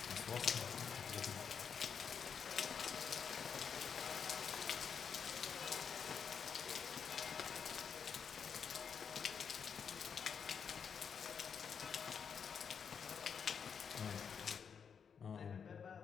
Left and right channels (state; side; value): quieter; right; 6.8 dB